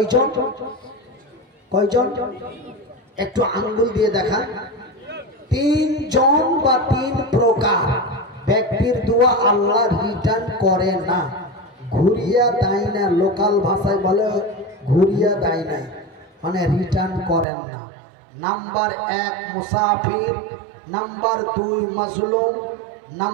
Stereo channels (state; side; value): drops out; left; at 17.4 s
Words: কয়জন? একটু আঙ্গুল দিয়ে দেখা। তিনজন বা তিন প্রকার ব্যক্তির দোয়া আল্লাহ রিটার্ন করে না, ঘুরিয়া দেয় না। লোকাল ভাষায় বলে ঘুরিয়া দেয় না, মানে রিটার্ন করেন না। নাম্বার 1 মুসাফির, নাম্বার 2 মাজলুম,